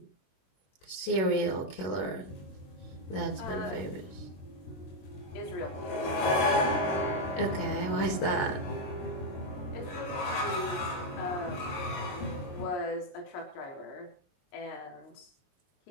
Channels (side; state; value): right; late; 22 ms